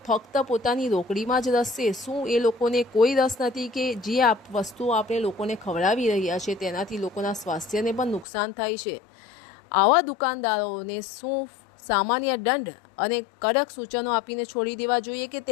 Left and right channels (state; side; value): drops out; right; at 8.2 s